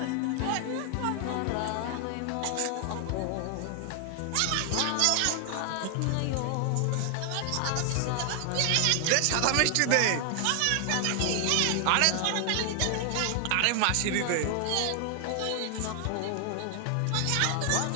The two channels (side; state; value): both; different; correlation 0.00